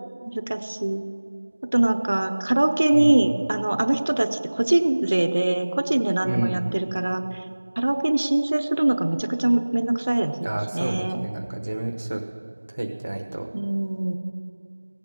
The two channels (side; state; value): both; inverted; correlation -1.00